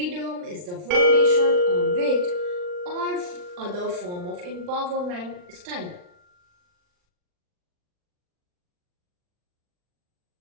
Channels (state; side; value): late; left; 39 ms